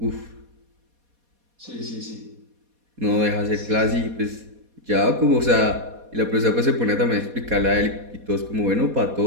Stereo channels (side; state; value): left; late; 4.2 ms